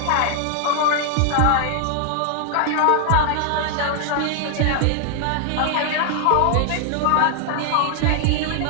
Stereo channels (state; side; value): different; both; correlation 0.00